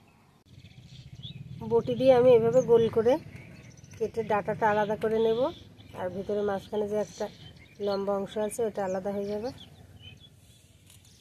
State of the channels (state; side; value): identical; both; correlation 1.00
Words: বটি দিয়ে আমি এভাবে গোল করে কেটে ডাঁটাটা আলাদা করে নেব, আর ভিতরে মাঝখানে যে একটা লম্বা অংশ আছে ওটা আলাদা হয়ে যাবে।